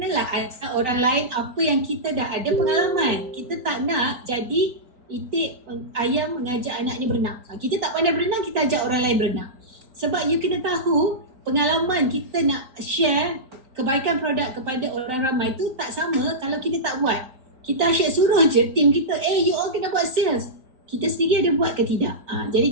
ajar orang lain apa yang kita dah ada pengalaman. Kita tak nak jadi itik ayam mengajak anaknya berenang. Kita tak pandai berenang, kita ajak orang lain berenang. Sebab you kena tahu, pengalaman kita nak share kebaikan produk kepada orang ramai tu tak sama kalau kita tak buat. Kita asyik suruh je tim kita, you all kena buat sales. Kita sendiri ada buat ke tidak? Jadi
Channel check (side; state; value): left; late; 4.4 ms